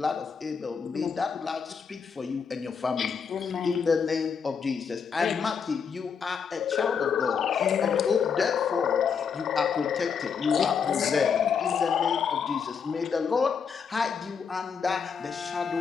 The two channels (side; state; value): right; quieter; 6.4 dB